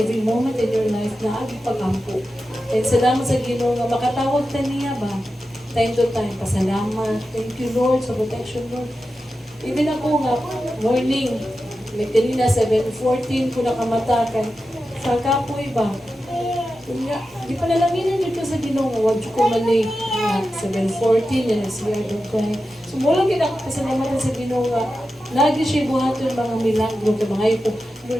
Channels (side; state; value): both; normal; correlation 0.91